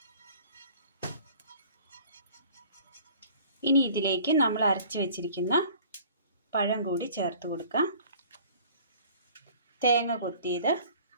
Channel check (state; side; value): inverted; both; correlation -0.49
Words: ഇനി ഇതിലേക്ക് നമ്മൾ അരച്ച് വെച്ചിരിക്കുന്ന പഴം കൂടി ചേർത്ത് കൊടുക്കാം. തേങ്ങ കൊത്തിയത്